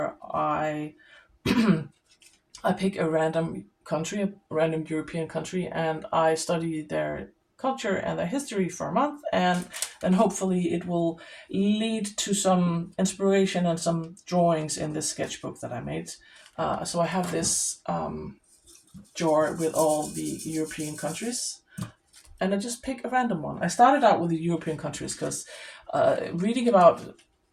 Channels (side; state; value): both; identical; correlation 1.00